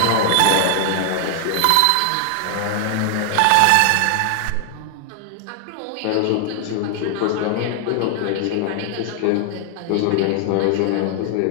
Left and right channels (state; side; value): different; both; correlation 0.00